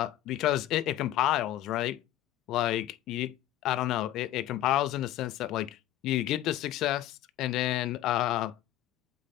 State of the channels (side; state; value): right; quieter; 13.5 dB